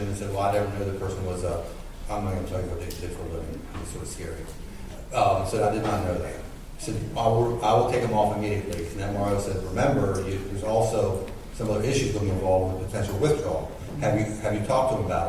and said, well, I never knew the person was I'm not going to tell you what they did for a living. It's sort of scary. So I did not know that. He said, I will take them off immediately. And the MRO said, remember, there's also some other issues going to be involved with potential withdrawal. Have you talked to him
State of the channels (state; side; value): identical; both; correlation 1.00